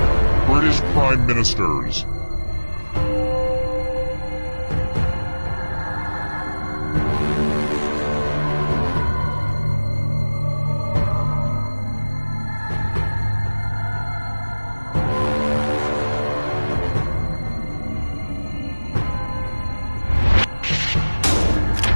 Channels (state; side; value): inverted; both; correlation -1.00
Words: British Prime Ministers.